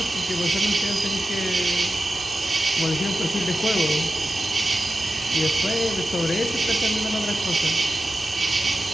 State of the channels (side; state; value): both; normal; correlation 0.92